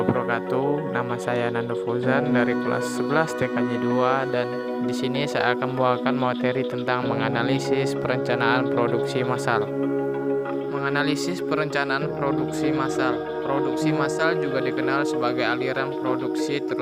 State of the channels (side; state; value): both; identical; correlation 1.00